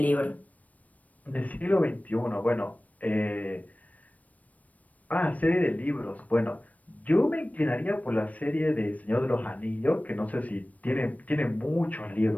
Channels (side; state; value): right; late; 0.071 ms